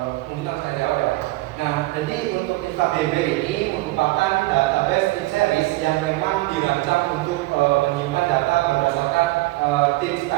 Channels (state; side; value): quieter; left; 20.2 dB